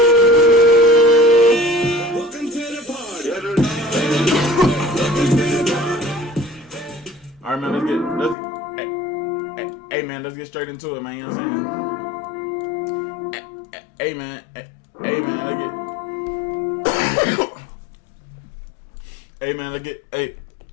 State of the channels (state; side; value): drops out; right; at 8.3 s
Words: Welcome to the party. Welcome to the party. All right, man. Hey, man. Let's get straight into it, man. You know what I'm saying? Hey, man. Hey, man.